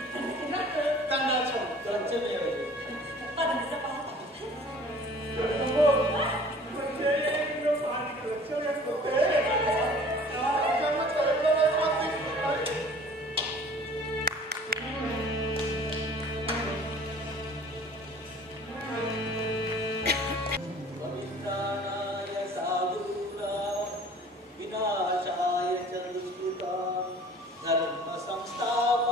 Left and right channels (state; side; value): normal; both; correlation 0.49